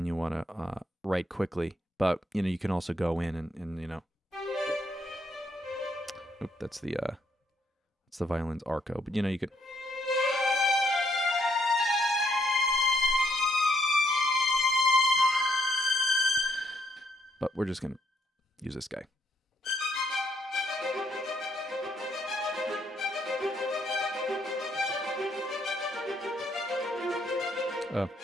you want to write quickly. But you know, you can also go in and you know. Oop, that's the violin's arco. But you know, you could. But we're just gonna use this guy.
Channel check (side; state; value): both; normal; correlation 0.73